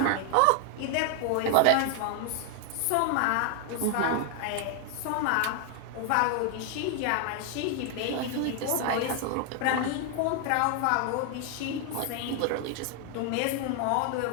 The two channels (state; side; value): different; both; correlation 0.00